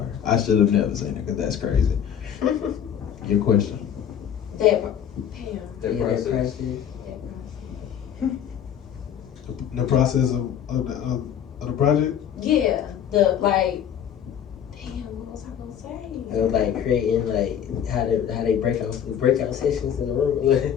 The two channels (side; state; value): right; quieter; 9.0 dB